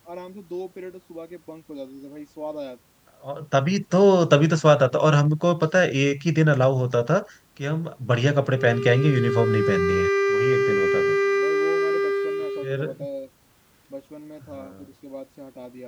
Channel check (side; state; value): both; identical; correlation 1.00